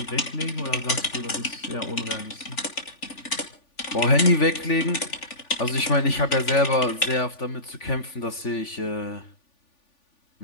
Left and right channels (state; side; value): late; right; 3.5 ms